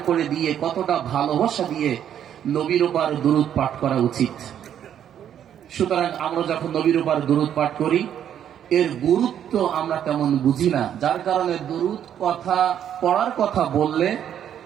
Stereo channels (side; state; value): left; quieter; 9.7 dB